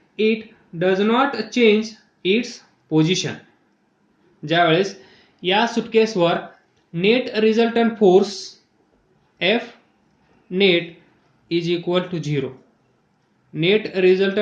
It does not change its position. ज्यावेळेस या सुटकेसवर net resultant force F net is equal to 0. Net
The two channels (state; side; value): identical; both; correlation 1.00